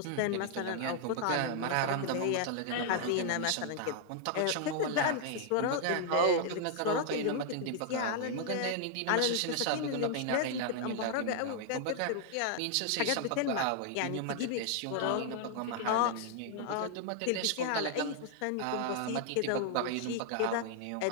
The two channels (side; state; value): both; different; correlation 0.00